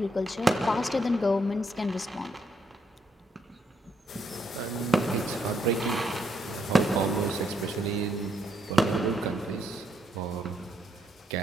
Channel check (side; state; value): both; normal; correlation 0.75